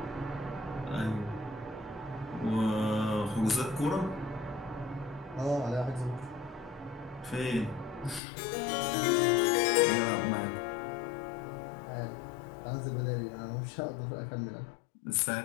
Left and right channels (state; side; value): drops out; right; at 8.2 s